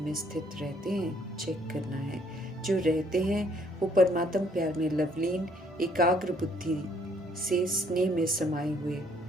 स्थित रहते हैं, चेक करना है। जो रहते हैं वो परमात्म प्यार में लवलीन एकाग्र बुद्धि से स्नेह में समाये हुए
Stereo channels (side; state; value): both; normal; correlation 0.64